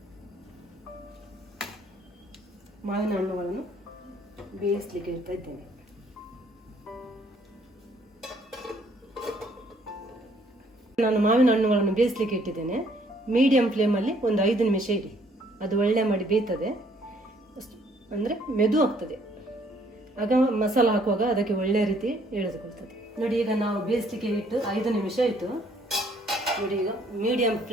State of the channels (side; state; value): both; normal; correlation 0.64